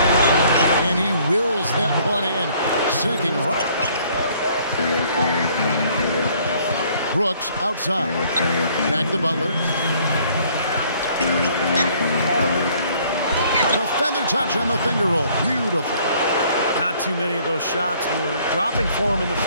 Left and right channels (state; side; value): inverted; both; correlation -0.60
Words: And he wills that one in. Sinking right. Brooks outside. Back to Butler. The feather touch on the finger roll. Beautiful. Not too many of those shots were dropping for him in the